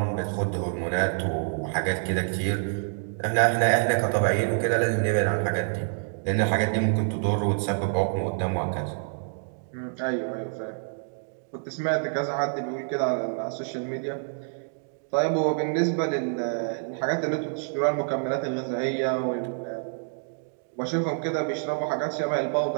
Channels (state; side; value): silent; left; digital silence